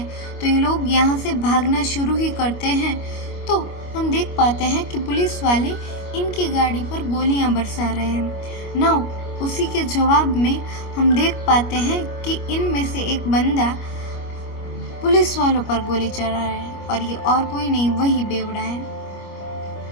तो ये लोग यहाँ से भागना शुरू ही करते हैं। तो हम देख पाते हैं कि पुलिस वाले इनकी गाड़ी पर गोलियां बरसा रहे हैं। नाउ उसी के जवाब में हम देख पाते हैं कि इनमें से एक बंदा पुलिस वालों पर गोली चला रहा है और ये और कोई नहीं, वही बेवड़ा है।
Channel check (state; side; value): late; right; 25 ms